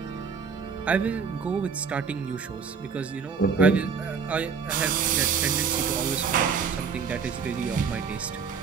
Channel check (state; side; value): quieter; left; 6.0 dB